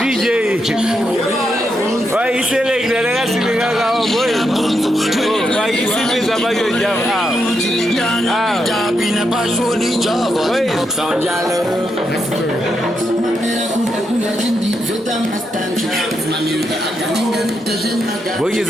why you select the legacy boy? Why you see me about your job? Boy, is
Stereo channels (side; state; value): both; normal; correlation 0.82